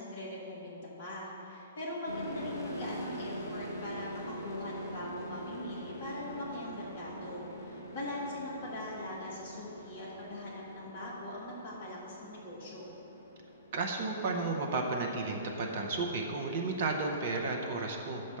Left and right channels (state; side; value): inverted; both; correlation -0.41